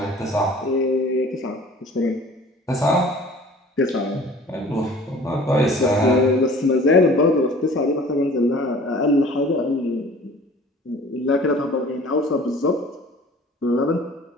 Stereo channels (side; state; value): both; normal; correlation 0.48